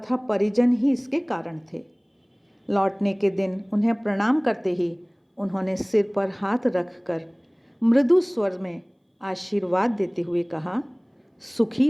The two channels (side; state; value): both; identical; correlation 1.00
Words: परिजन ही इसके कारण थे। लौटने के दिन उन्हें प्रणाम करते ही उन्होंने सिर पर हाथ रखकर मृदु स्वर में आशीर्वाद देते हुए कहा, सुखी